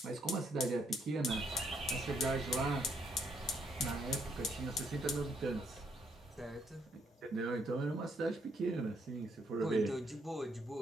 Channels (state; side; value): normal; both; correlation 0.72